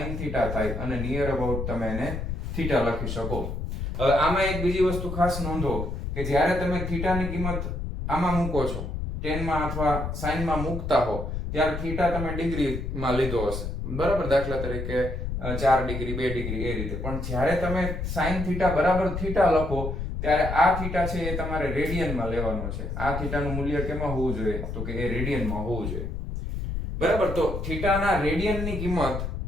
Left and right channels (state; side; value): noise; left; rumble, 4 dB below the sound